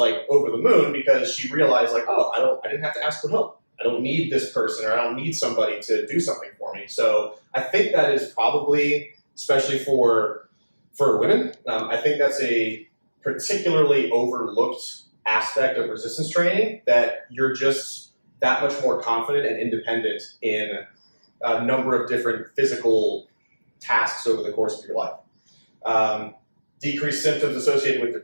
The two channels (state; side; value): inverted; both; correlation -1.00